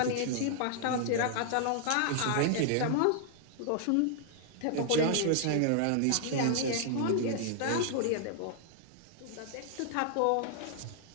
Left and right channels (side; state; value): both; different; correlation 0.00